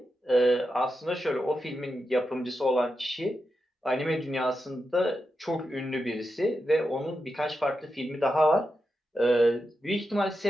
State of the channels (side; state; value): both; normal; correlation 0.88